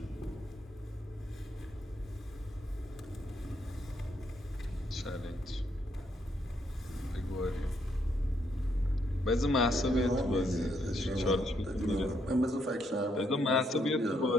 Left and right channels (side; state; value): both; normal; correlation 0.74